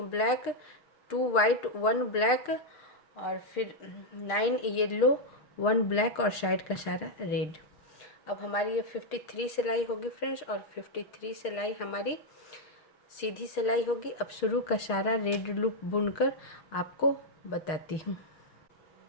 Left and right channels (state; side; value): late; right; 6.6 ms